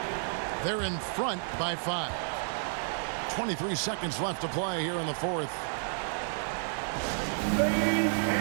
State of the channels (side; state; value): left; silent; digital silence